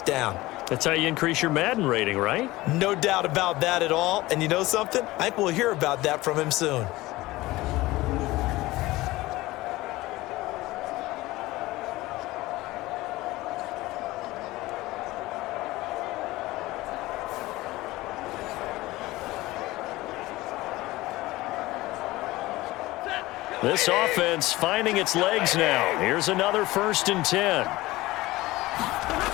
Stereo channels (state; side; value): quieter; right; 18.9 dB